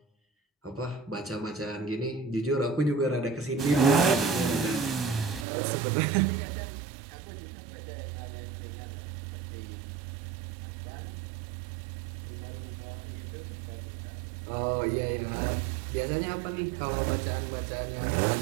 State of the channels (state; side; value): drops out; left; at 5.5 s